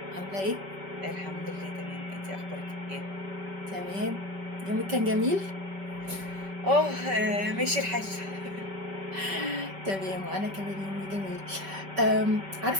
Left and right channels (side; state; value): left; late; 5.2 ms